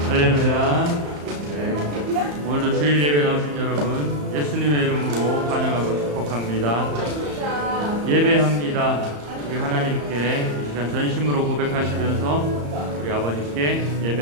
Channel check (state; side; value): late; left; 34 ms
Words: 할렐루야. 네. 오늘도 주일 예배 나오신 여러분 예수님의 이름으로 환영하고 축복합니다. 예배합니다. 우리 하나님께 이 시간 전심으로 고백하시면서 우리 아버님께